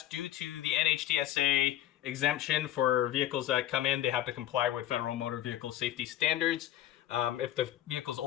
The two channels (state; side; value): quieter; right; 12.8 dB